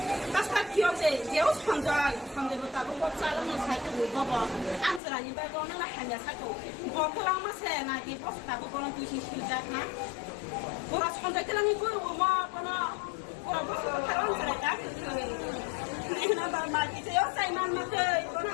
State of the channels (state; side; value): drops out; right; at 5.0 s